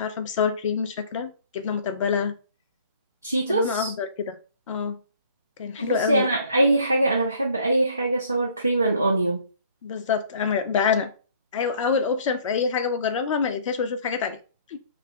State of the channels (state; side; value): inverted; both; correlation -0.56